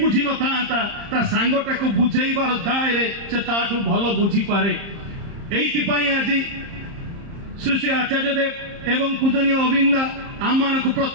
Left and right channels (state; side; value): late; left; 30 ms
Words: ନଥାନ୍ତା ତା ସାଙ୍ଗଟାକୁ ବୁଝେଇବାର ଦାୟରେ ସେ ତାଠୁ ଭଲ ବୁଝିପାରେ। ଏଇଥିପାଇଁ ଆଜି ଶ୍ରୀ ଶ୍ରୀ ଆଚାର୍ଯ୍ୟ ଦେବ ଏବଂ ପୂଜନୀୟ ଅବିନ୍ଦା ଆମମାନଙ୍କୁ